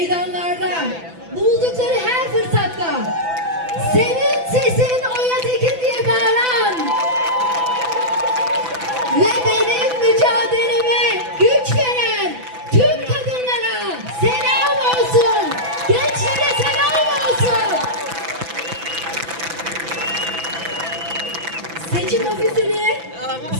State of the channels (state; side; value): late; left; 6.0 ms